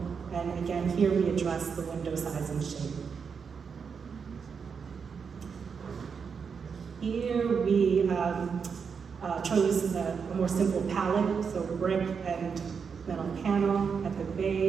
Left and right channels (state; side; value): quieter; left; 6.1 dB